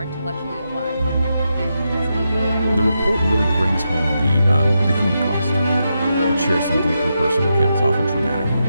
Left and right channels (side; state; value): both; inverted; correlation -0.85